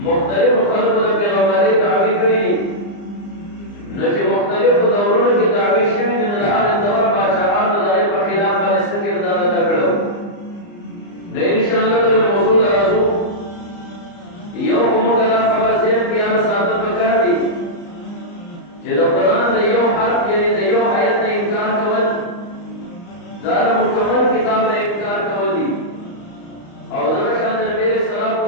مختلفو خلکو د پیغمبرۍ دعوې کړي دي نو چې مختلفو دورونو کې دعوې شوي دي نو د هغې دور پاچاهانو د هغې په خلاف باندې څه کردار ادا کړی نو انشاءالله د موضوع ته راځو یو خو موږ دا خبره ذهن کې یاد ساتل پکار دي چې د قرآن د یو حرف یعنې د یو آیت نه انکار کول دا د مکمل کتاب نه انکار کول دي او دغه شان د نبي علیه الصلوۃ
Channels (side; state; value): right; late; 34 ms